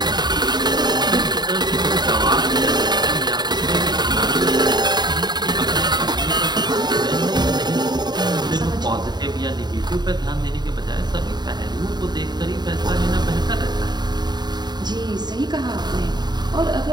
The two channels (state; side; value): late; left; 0.20 ms